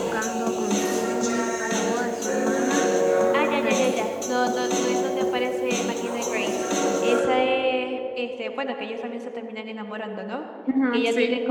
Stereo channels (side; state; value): both; identical; correlation 1.00